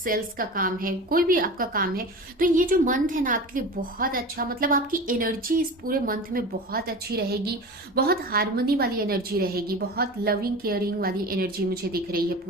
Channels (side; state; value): both; normal; correlation 0.32